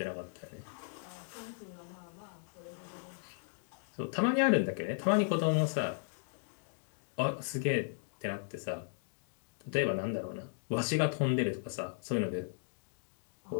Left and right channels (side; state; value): right; silent; digital silence